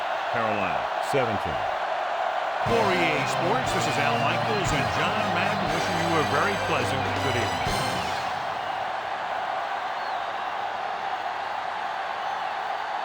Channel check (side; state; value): both; identical; correlation 1.00